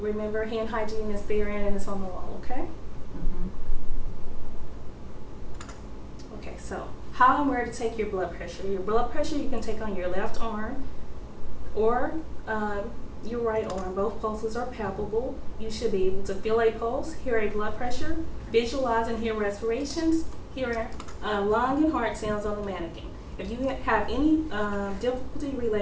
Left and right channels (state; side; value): identical; both; correlation 1.00